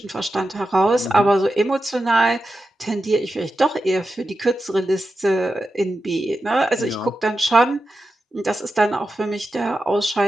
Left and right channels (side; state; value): both; normal; correlation 0.90